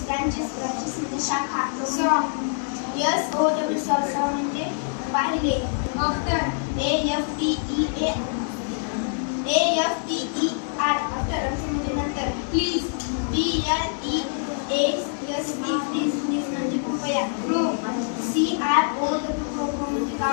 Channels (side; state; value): right; silent; digital silence